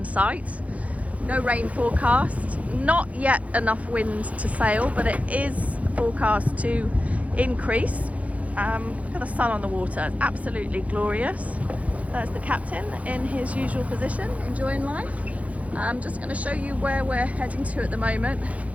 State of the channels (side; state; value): left; late; 0.067 ms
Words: sight. No rain forecast, not yet enough wind to sail, but it is forecast to increase. Look at the sun on the water, it's absolutely glorious. There's the captain in his usual position, enjoying life. I'm just going to show you where we're heading to at the moment.